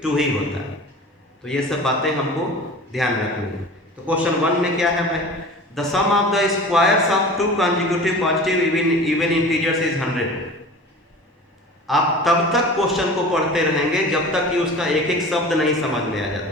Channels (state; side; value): normal; both; correlation 0.38